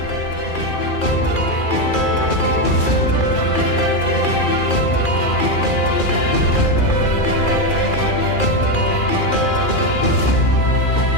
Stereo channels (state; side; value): late; right; 2.4 ms